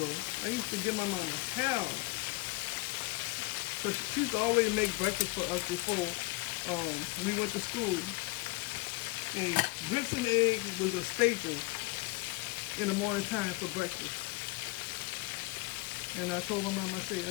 I used to give my mama hell. But she used to always make breakfast for us before we went to school. And grits and eggs was a staple in the morning time for breakfast. And I told my mom, I said,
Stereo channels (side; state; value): right; quieter; 23.2 dB